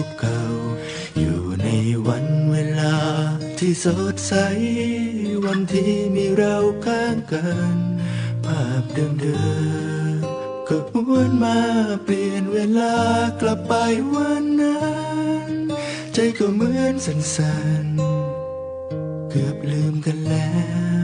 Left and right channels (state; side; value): identical; both; correlation 1.00